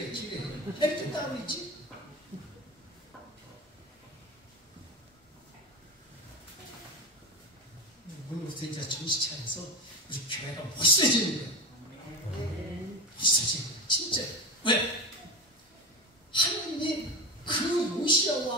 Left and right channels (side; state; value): both; normal; correlation 0.22